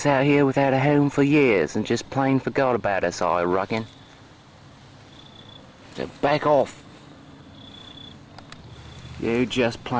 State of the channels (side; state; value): both; identical; correlation 1.00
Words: out here without a home for years and just plain forgot about us, I reckon. So back off. You just